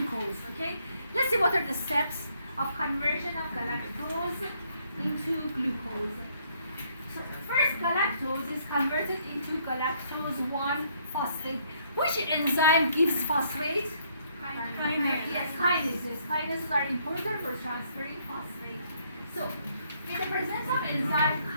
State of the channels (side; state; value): both; inverted; correlation -0.68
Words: okay? Let's see what are the steps of conversion of galactose into glucose. So first, galactose is converted into galactose 1-phosphate. Which enzyme gives phosphate? Kinase. Yes, kinases. Kinases are important for transferring phosphate. So, in the presence of enzyme